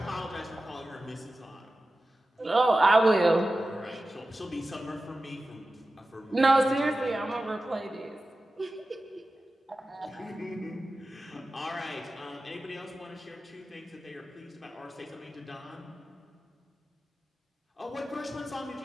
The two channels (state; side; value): normal; both; correlation 0.94